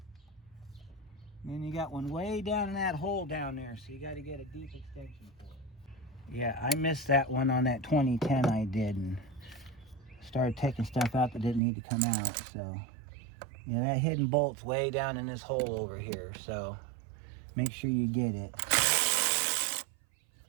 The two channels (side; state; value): left; drops out; at 11.6 s